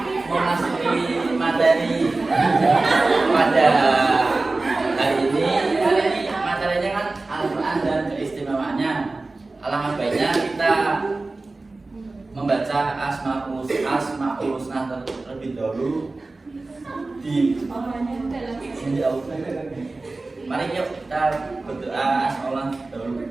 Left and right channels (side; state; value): left; quieter; 3.3 dB